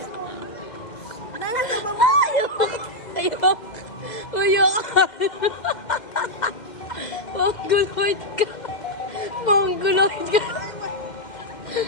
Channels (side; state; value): right; late; 2.1 ms